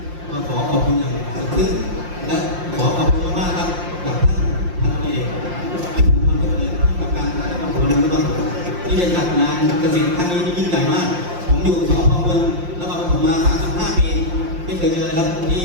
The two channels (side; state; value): left; late; 5.7 ms